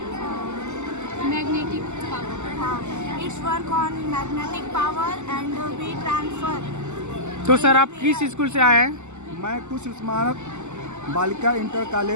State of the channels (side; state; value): left; late; 0.83 ms